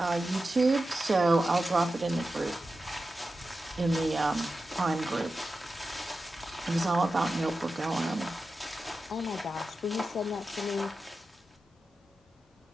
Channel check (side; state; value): both; normal; correlation 0.92